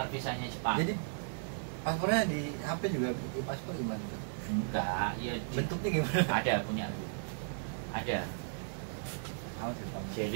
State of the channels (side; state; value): left; silent; digital silence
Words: visanya Jepang. Jadi paspornya di HP juga di paspor gimana tuh? Enggak, ya Bentuknya gimana? ada punya aku. Ada. Tahu sih, Pak.